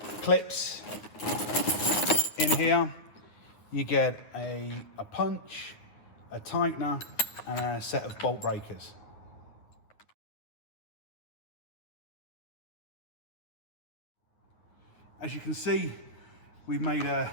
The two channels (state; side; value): late; right; 9.5 ms